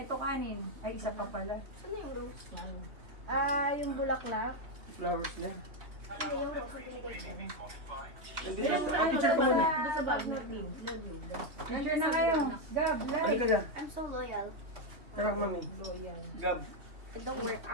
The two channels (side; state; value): left; late; 2.9 ms